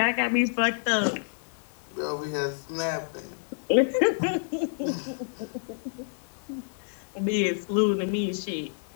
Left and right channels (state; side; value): silent; right; digital silence